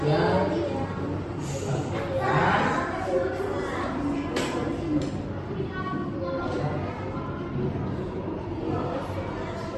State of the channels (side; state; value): both; identical; correlation 1.00